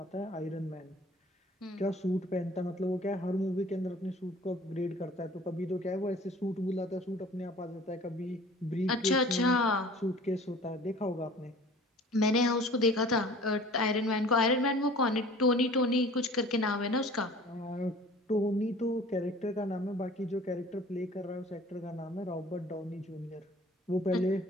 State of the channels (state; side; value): normal; both; correlation 0.47